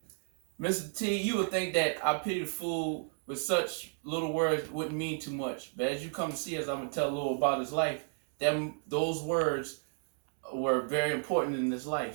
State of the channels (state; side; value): silent; left; 56 dB below the other